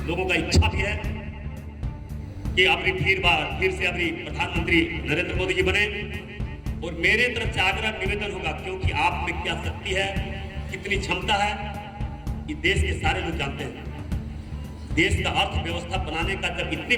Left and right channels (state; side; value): identical; both; correlation 1.00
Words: लोगों का इच्छा भी है कि अपनी फिर से अपनी प्रधानमंत्री नरेंद्र मोदी जी बने। और मेरे तरफ से आग्रह निवेदन होगा, क्योंकि आप में क्या शक्ति है, कितनी क्षमता है, ये देश के सारे लोग जानते हैं। देश का अर्थव्यवस्था बनाने का जब इतनी